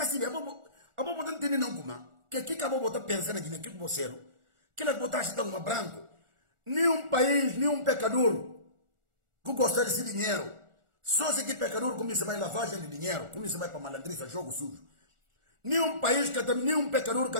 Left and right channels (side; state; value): left; late; 1.4 ms